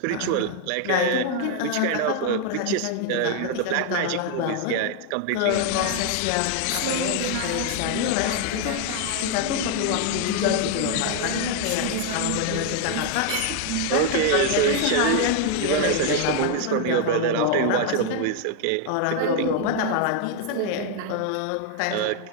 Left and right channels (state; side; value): different; both; correlation 0.00